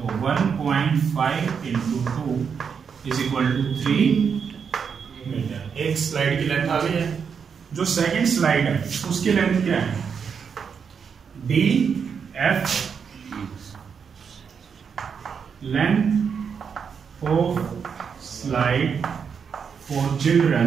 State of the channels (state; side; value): quieter; left; 6.6 dB